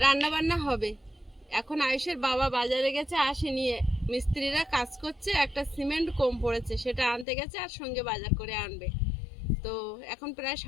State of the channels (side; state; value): right; drops out; at 7.2 s